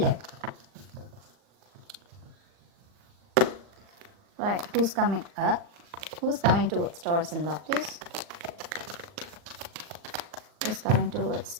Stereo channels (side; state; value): left; late; 39 ms